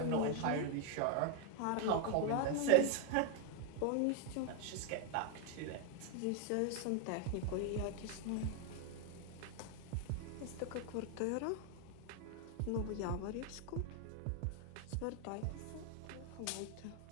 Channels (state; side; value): different; both; correlation 0.01